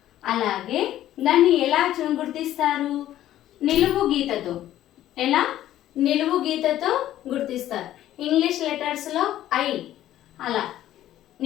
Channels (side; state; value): right; quieter; 12.9 dB